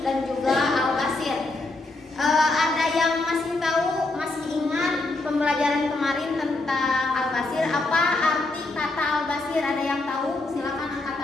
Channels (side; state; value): right; quieter; 3.0 dB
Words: dan juga Al-Basir. Ada yang masih tahu, masih ingat pembelajaran kemarin tentang Al-Basir? Apa arti kata Al-Basir? Ada yang tahu? Silakan angkat